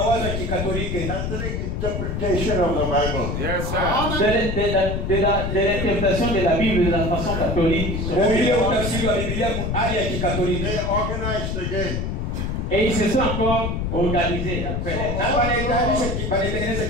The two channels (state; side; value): noise; left; rumble, 2 dB below the sound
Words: interpretation of the Bible. Yes, sir. De l'interprétation de la Bible de la façon catholique. They organized again. Et ils se sont encore organisés après.